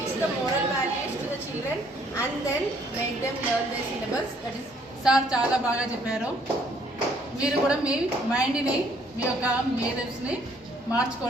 the moral values to the children and then make them learn their syllabus. That is. Sir చాలా బాగా చెప్పారు. మీరు కూడా మీ మైండ్ని మీ యొక్క మేధస్ని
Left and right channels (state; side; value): normal; both; correlation 0.64